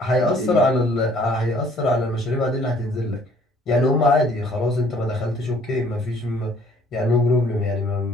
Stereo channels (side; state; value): both; normal; correlation 0.59